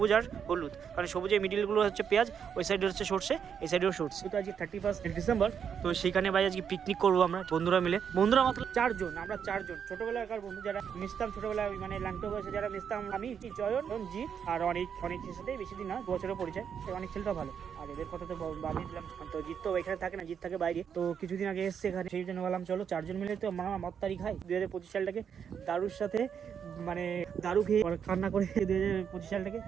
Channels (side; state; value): left; quieter; 7.6 dB